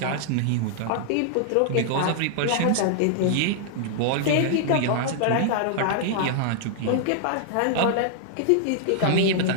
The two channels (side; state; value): both; different; correlation -0.01